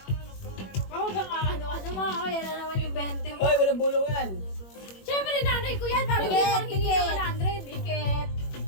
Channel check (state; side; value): late; right; 21 ms